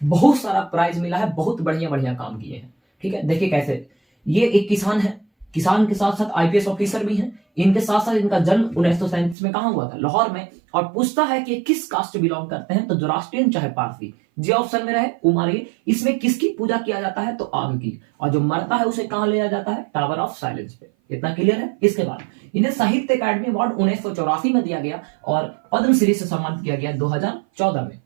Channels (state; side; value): drops out; left; at 9.3 s